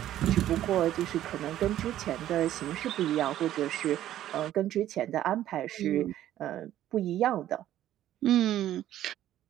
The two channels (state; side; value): quieter; left; 12.6 dB